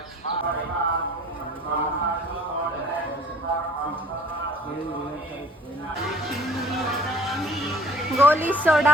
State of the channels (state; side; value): normal; both; correlation 0.52